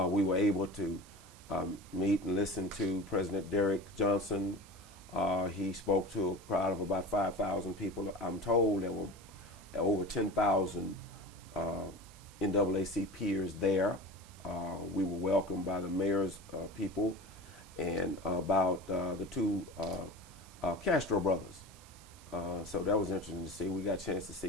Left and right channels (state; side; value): noise; right; hiss, 23 dB below the sound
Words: were able to meet and listen to President Derrick Johnson. He spoke to a crowd of about 5,000 people. I'm told there were over 10,000 NAACPers there. We were welcomed by the mayor's people and about the two Castro brothers. So that was interesting to see. We got a chance to